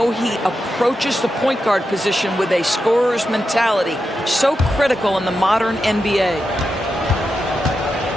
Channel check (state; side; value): normal; both; correlation 0.88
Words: he approaches the point guard position with a scorer's mentality. So critical in the modern NBA.